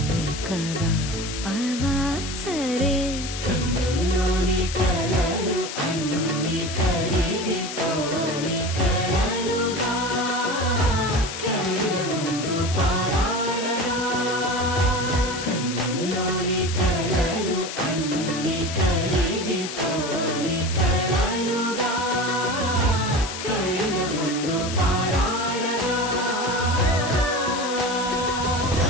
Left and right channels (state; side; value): noise; left; hiss, 8 dB below the sound